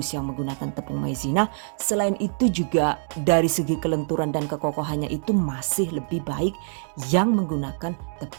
yang menggunakan tepung maizena. Selain itu juga dari segi kelenturan dan kekokohannya itu masih lebih baik yang menggunakan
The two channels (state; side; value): silent; left; 62 dB below the other